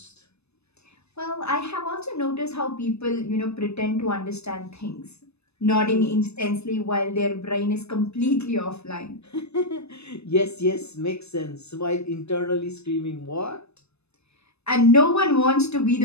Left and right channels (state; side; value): late; right; 0.80 ms